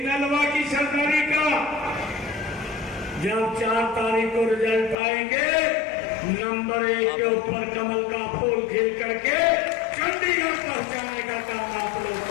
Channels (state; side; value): drops out; right; at 5.0 s